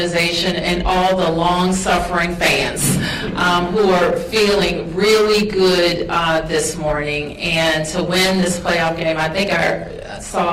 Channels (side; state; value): both; identical; correlation 1.00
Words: and all the long-suffering fans who are feeling really good this morning. And to win this playoff game, I think I